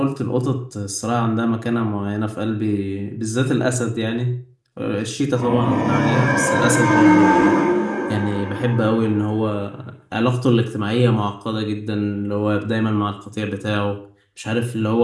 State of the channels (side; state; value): both; identical; correlation 1.00